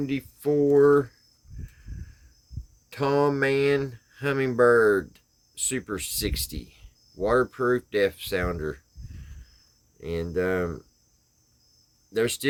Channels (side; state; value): both; identical; correlation 1.00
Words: Tom Mann Hummingbird Super 60 waterproof depth sounder. And they're